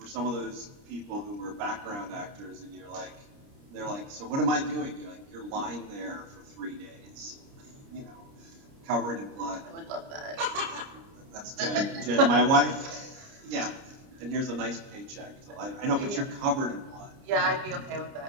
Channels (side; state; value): left; late; 30 ms